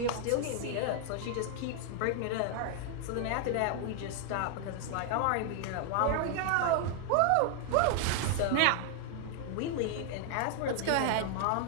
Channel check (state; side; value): different; both; correlation 0.00